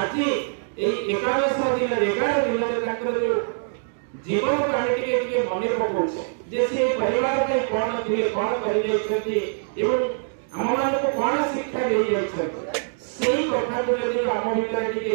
ए 11 दिन रे ताकर जो जीवन काहे टिके मने पकोछ जे से परिवार के कोन थिले कोन करी जाइछथि एवं हम मान को कोन शिक्षा दे जाइछथि सेही कथा को यदि हम भीतर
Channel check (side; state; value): left; silent; digital silence